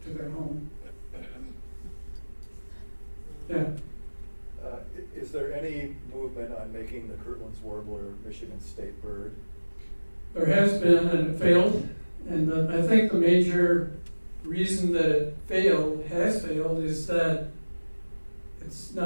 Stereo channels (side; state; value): both; inverted; correlation -1.00